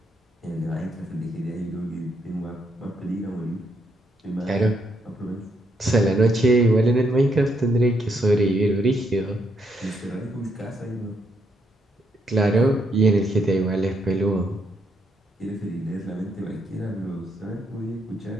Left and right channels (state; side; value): normal; both; correlation 0.76